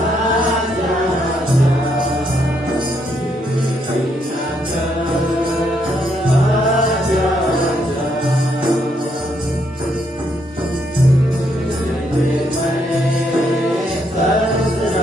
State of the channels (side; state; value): both; normal; correlation 0.74